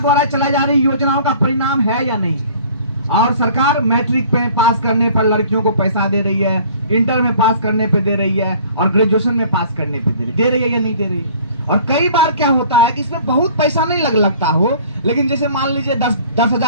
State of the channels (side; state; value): both; inverted; correlation -0.51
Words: द्वारा चलाई जा रही योजनाओं का परिणाम है या नहीं? और सरकार मैट्रिक पे पास करने पर लड़कियों को पैसा दे रही है, इंटर में पास करने पे दे रही है, और ग्रेजुएशन में पास करने पे दे रही है या नहीं दे रही है? और कई बार क्या होता है कि इसमें बहुत पैसा नहीं लगता हो, लेकिन जैसे मान लीजिए